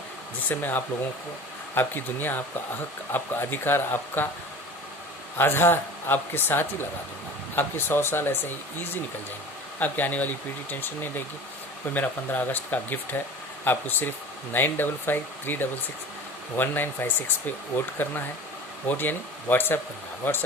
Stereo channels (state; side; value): normal; both; correlation 0.38